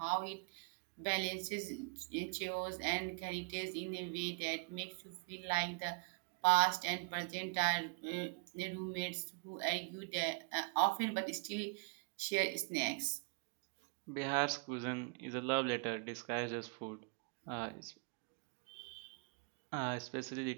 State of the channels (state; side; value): quieter; left; 38.3 dB